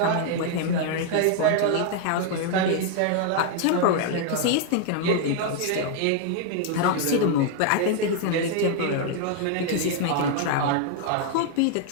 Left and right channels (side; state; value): both; different; correlation 0.00